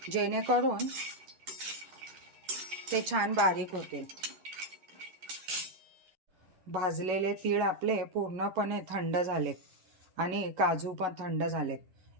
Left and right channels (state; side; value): late; left; 11 ms